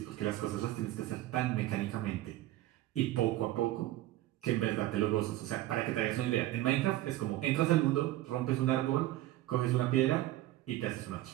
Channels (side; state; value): left; quieter; 15.4 dB